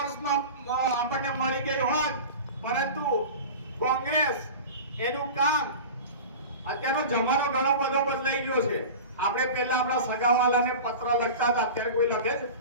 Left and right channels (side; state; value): both; inverted; correlation -0.33